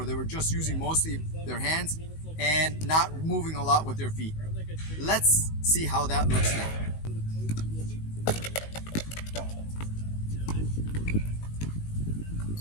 they were just using mostly their hands and not moving a lot with their feet. Let's see how that looks now.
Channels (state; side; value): late; right; 19 ms